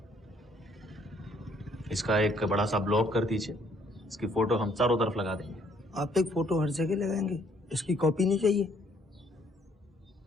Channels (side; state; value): both; normal; correlation 0.65